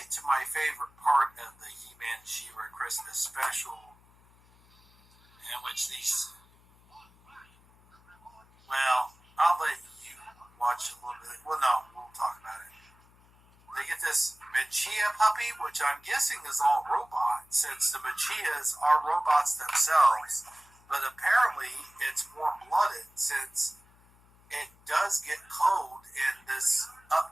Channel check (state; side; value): noise; left; hum, 29 dB below the sound